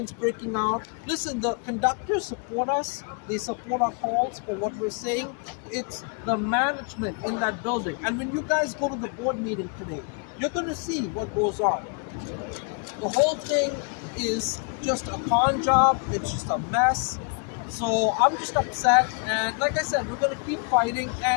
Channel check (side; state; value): right; quieter; 37.7 dB